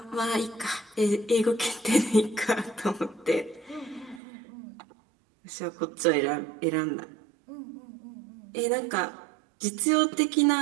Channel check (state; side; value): drops out; left; at 4.2 s